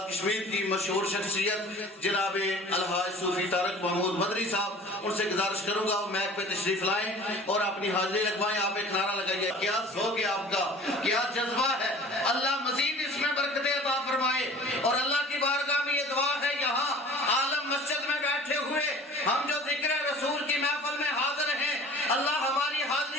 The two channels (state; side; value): normal; both; correlation 0.44